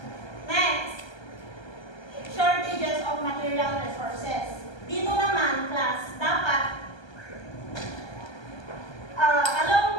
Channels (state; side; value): late; right; 1.3 ms